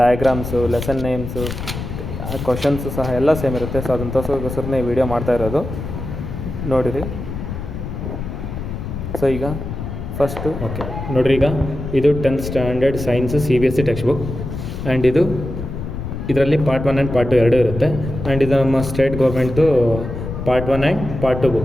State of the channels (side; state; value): left; noise; rumble, 7 dB below the sound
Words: lesson names, questions ಸಹ ಎಲ್ಲ ಸೇಮ್ ಇರುತ್ತೆ. ಸೊ ಅದನ್ನು ತೋರಿಸೋಕ್ಕೋಸ್ಕರನೇ ಈ ವಿಡಿಯೋ ಮಾಡ್ತಾ ಇರೋದು, ನೋಡಿರಿ. ಸೊ ಈಗ ಫಸ್ಟು ನೋಡಿರಿ, ಈಗ ಇದು 10th standard science CBSE text book. And ಇದರಲ್ಲಿ ಪಾರ್ಟ್ 1 ಆ್ಯಂಡ್ ಪಾರ್ಟ್ 2 ಎರಡೂ ಇರುತ್ತೆ. ಆ್ಯಂಡ್ ಇದು ನಮ್ಮ ಸ್ಟೇಟ್ ಗೌರ್ಮೆಂಟ್ದು part 1 and part 2